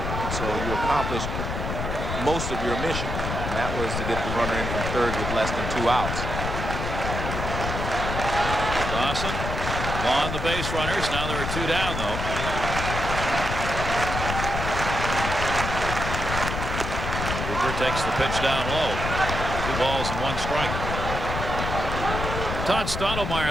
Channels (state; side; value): noise; left; rumble, 3 dB below the sound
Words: So you accomplished most of your mission, and that was to get the runner in from third with less than 2 outs. Dawson on the base runners. Now there are 2 down, though. Cooper takes the pitch down low. 2 balls and 1 strike. Todd